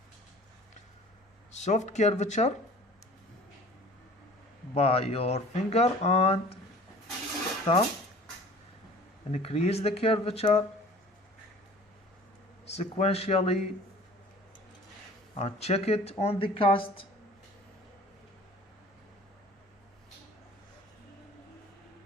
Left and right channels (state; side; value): normal; both; correlation 0.46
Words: Soft curvature by your finger and thumb. Increase the curvature sequentially and check it on the cast.